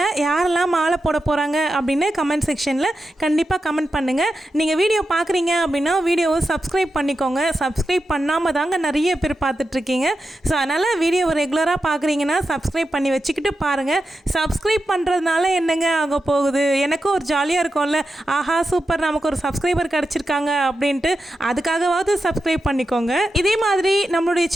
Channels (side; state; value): both; normal; correlation 0.89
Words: யாரெல்லாம் மாலை போட போகிறாங்க அப்படின்னு கமெண்ட் செக்ஷனில் கண்டிப்பாக கமெண்ட் பண்ணுங்கள். நீங்கள் வீடியோ பார்க்குறீங்க அப்படின்னா வீடியோவை சப்ஸ்கிரைப் பண்ணிக்கோங்க. சப்ஸ்கிரைப் பண்ணாமல் தாங்க நிறைய பேர் பார்த்துட்ருக்கீங்க. ஸோ அதனால் வீடியோவை ரெகுலராக பார்க்குறீங்கன்னா சப்ஸ்கிரைப் பண்ணி வச்சுக்கிட்டு பாருங்கள். சப்ஸ்கிரைப் பண்ணுறதுனால என்னங்க ஆக போகுது? எனக்கும் ஒரு ஜாலியாக இருக்கும்ல, ஆஹா சூப்பர் நமக்கு ஒரு சப்ஸ்கிரைபர் கிடச்சிருக்காங்க அப்படின்ட்டு. அதுக்காகவாவது சப்ஸ்கிரைப் பண்ணிக்கோங்க. இதே மாதிரி நம்மளுடைய